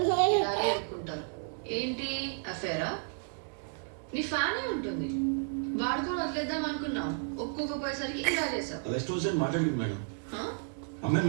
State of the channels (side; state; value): left; silent; 56 dB below the other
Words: ఇలాగే ఎదుర్కొంటారు. ఏంటి అఫేరా? నీ ఫ్యానే ఉంటుంది, వాడుకొని వదిలేద్దాం అనుకున్నావు, ఒక్కొక్కపోయేసరికి ఇలా చేశావు. అలా స్టోర్ మాట్లాడింది మేడం. అమ్మాయిని